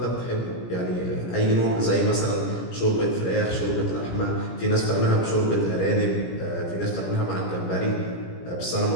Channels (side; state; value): right; late; 17 ms